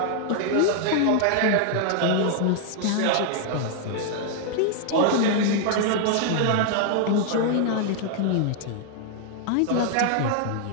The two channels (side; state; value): both; different; correlation 0.00